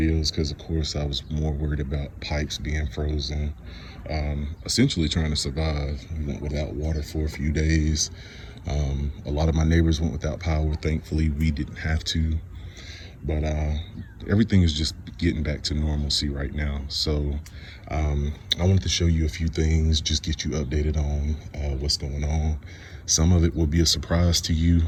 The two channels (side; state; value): both; identical; correlation 1.00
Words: because, of course, I was more worried about pipes being frozen, essentially trying to survive. We went without water for a few days. A lot of my neighbors went without power. Thankfully, we didn't have to. But everything is just getting back to normalcy right now. So I wanted to show you a few things, just get you updated on what's going on. Some of it will be a surprise to you.